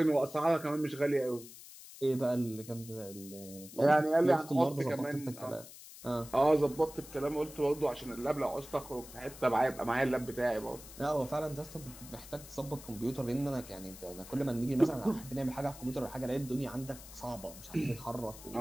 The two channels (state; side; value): noise; left; hiss, 16 dB below the sound